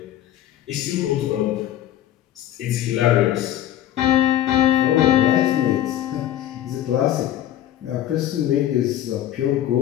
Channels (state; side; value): quieter; right; 12.2 dB